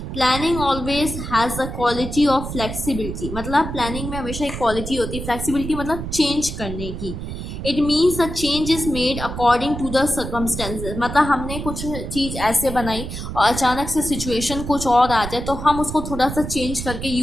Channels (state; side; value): noise; right; rumble, 7 dB below the sound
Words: planning always has the quality of flexibility. मतलब प्लानिंग में हमेशा एक क्वालिटी होती है, फ्लेक्सिबिलिटी मतलब चेंज करने की। It means the change is made according to the circumstances. मतलब हमने कुछ चीज़ ऐसे बनाई और अचानक से सिचुएशन कुछ और आ जाए तो हम उसको थोड़ा सा चेंज करके